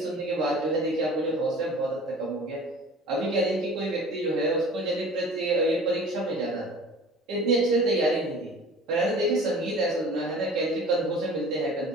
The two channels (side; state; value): both; normal; correlation 0.43